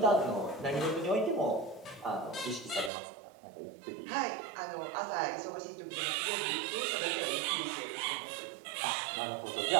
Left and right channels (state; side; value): drops out; left; at 2.9 s